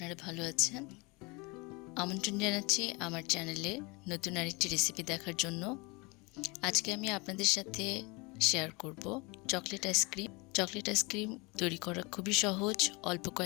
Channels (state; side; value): quieter; right; 27.0 dB